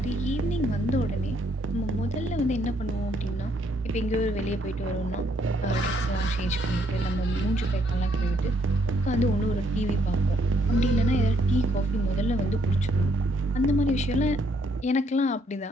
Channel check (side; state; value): both; normal; correlation 0.70